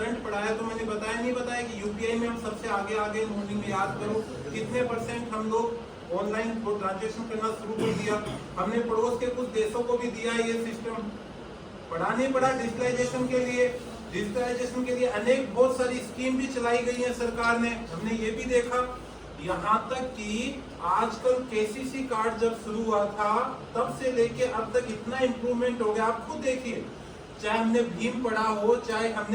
पढ़ाया तो मैंने बताया नहीं बताया कि यूपीआई में हम सबसे आगे मॉर्निंग में याद करो कितने % हम लोग ऑनलाइन ट्रांजेक्शन करना शुरू कर दिया। हमने पड़ोस के कुछ देशों को भी दिया ये सिस्टम। पढ़ा नहीं पढ़ा डिजिटलाइजेशन के लिए? डिजिटलाइजेशन के लिए अनेक बहुत सारी स्कीम भी चलाई गई है सरकार ने, हमने ये भी देखा। यहाँ तक कि आजकल KCC कार्ड जब शुरू हुआ था तब से लेके अब तक इतना इम्प्रूवमेंट हो गया। आप खुद देखिए, चाहे हमने भीम पढ़ा हो, चाहे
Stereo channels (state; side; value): identical; both; correlation 1.00